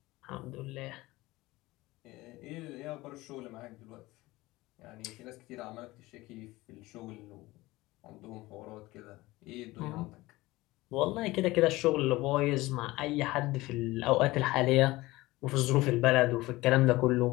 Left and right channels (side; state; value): right; quieter; 19.5 dB